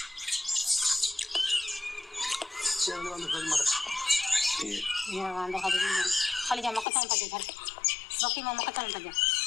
खाली जा मक्का चावल पजे घर बाकी में मक्का चावल पजे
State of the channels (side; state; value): right; drops out; at 6.9 s